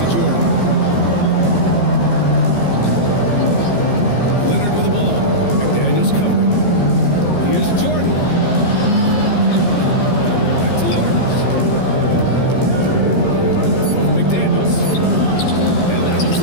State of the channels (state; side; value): late; right; 15 ms